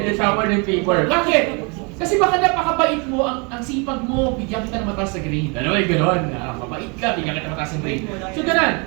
ng shower ng favor. Bakit? Kasi baka napakabait mo, ang sipag mo, bigyan kita ng mataas na grade. Ano ba yung gano'n? Mabait ka, bigyan kita ng mataas na grade. So gano'n,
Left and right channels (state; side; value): quieter; left; 32.2 dB